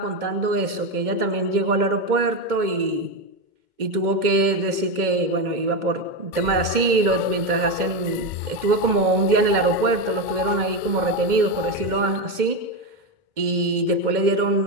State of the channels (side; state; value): left; late; 2.1 ms